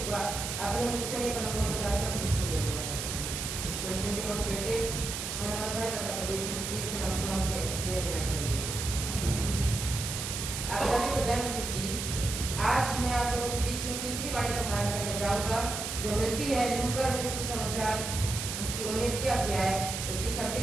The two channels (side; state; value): right; noise; hiss, 4 dB below the sound